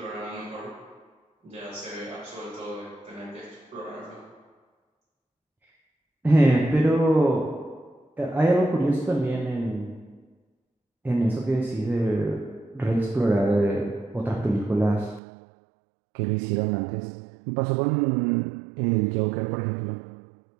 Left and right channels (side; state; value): left; drops out; at 15.2 s